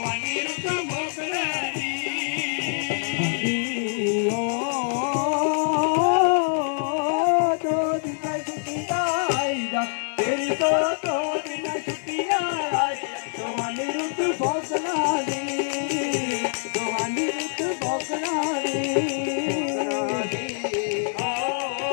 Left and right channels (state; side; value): silent; right; digital silence